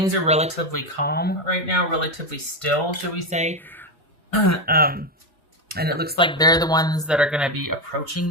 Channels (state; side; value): normal; both; correlation 0.10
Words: are relatively calm right now, relatively still, should we say. And it looks like they're the ones that are going to be